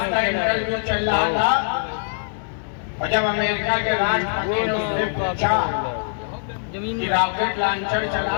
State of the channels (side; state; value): right; silent; 64 dB below the other